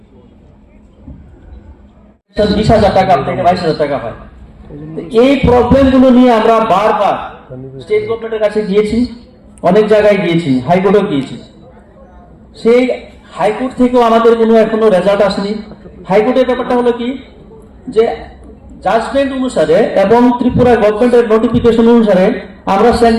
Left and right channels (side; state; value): both; identical; correlation 1.00